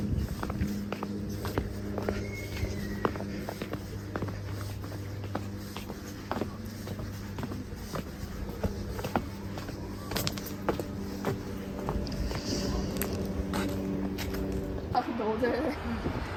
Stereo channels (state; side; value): identical; both; correlation 1.00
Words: 아 근데 어제